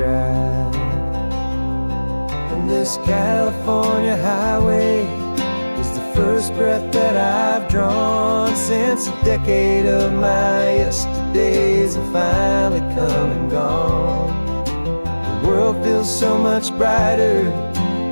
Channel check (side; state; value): both; inverted; correlation -1.00